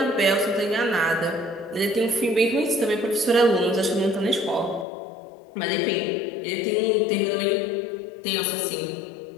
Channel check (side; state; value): right; drops out; at 4.9 s